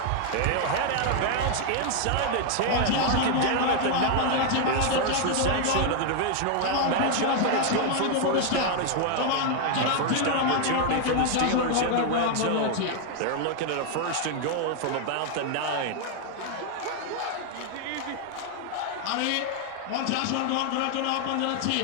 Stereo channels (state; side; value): different; both; correlation 0.00